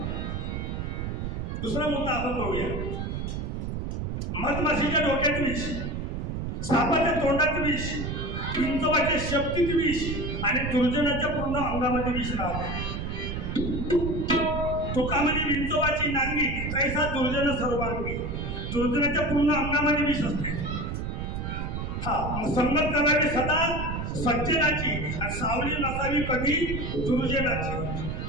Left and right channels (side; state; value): right; noise; rumble, 3 dB below the sound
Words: दुसरा मुद्दा आपण पाहूया. मधमाशीच्या डोक्यात विष, सापाच्या तोंडात विष, विंचवाच्या शक्तीत विष आणि दुर्जनाच्या पूर्ण अंगामध्ये विष राहते. तुकामध्ये विंचवाची नांगी कैसा दुर्जन सर्वांगी, दुर्जनाच्या पूर्ण अंगामध्ये विष असते. हा संगत करावी सदा सज्जनाची आणि सावली नसावी कधी दुर्जनाची.